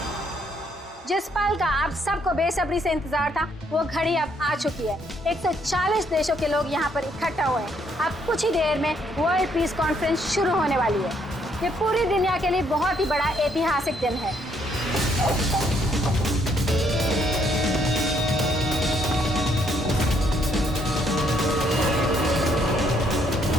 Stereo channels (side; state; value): both; normal; correlation 0.70